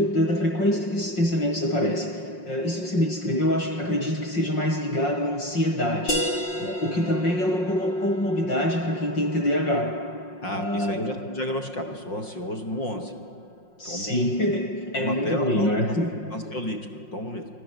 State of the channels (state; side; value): late; right; 5.6 ms